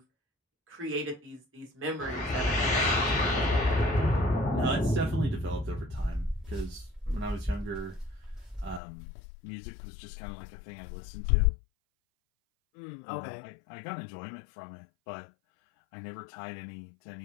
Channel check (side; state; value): right; drops out; at 8.8 s